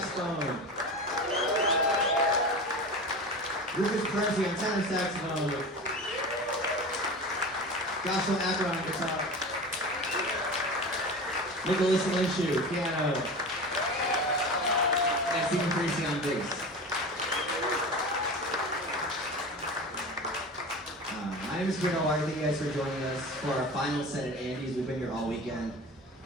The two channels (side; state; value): both; normal; correlation 0.31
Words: Rich Hebron on tenor saxophone. Joshua Hebron on guitar. Nicholas Linshu, piano. And Stephen Parisi on bass. My name is Kabir Dalawari. Thank you guys for joining us for our final set at Andy's. We've been here all weekend,